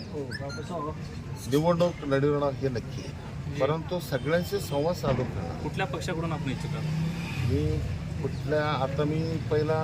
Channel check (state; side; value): identical; both; correlation 1.00